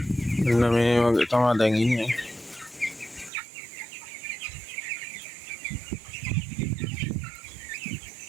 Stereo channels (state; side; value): drops out; left; at 3.3 s